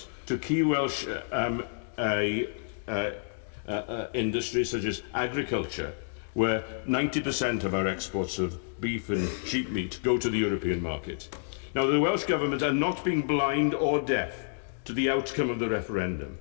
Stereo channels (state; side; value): silent; right; digital silence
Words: to key Welsh industries such as agriculture, where 90% of our exports of beef and sheep meat go to the European market. Now, the Welsh Government are not being blind or deaf to the outcome of the referendum.